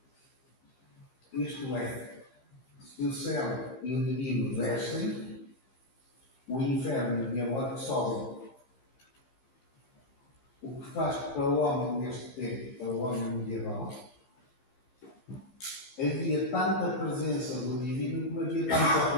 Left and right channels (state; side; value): late; right; 15 ms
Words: Isto é, se o céu e o divino descem, o inferno e o diabólico sobem. O que faz que para o homem neste tempo, para o homem medieval, havia tanta presença do divino como havia tanta